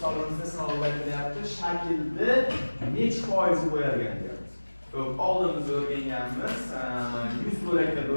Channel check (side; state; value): both; inverted; correlation -1.00